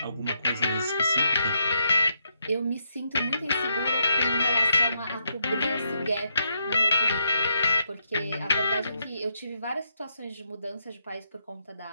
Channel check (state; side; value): inverted; both; correlation -0.79